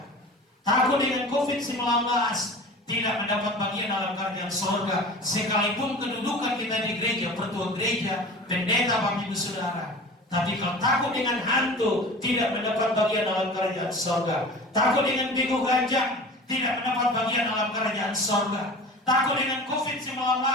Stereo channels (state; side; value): normal; both; correlation 0.38